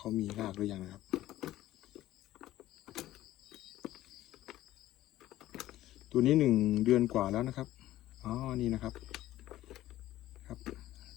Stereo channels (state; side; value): quieter; right; 14.8 dB